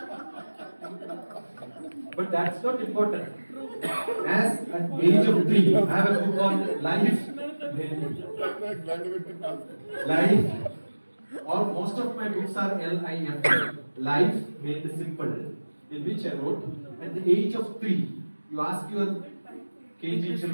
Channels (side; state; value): both; inverted; correlation -1.00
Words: But that's not important. As at age of 3, I have a book called Life. Life. All most of my books are L-I-F. Life made simple, in which I wrote at the age of 3. You ask your KG